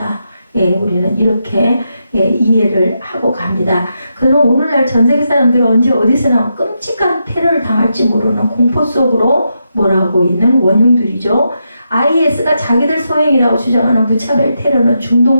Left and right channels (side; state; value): both; inverted; correlation -0.84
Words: 우리는 이렇게 이해를 하고 갑니다. 그럼 오늘날 전 세계 사람들은 언제 어디서나 끔찍한 테러를 당할지 모르는 공포 속으로 몰아가고 있는 원흉들이죠. IS가 자기들 소행이라고 주장하는 무차별 테러는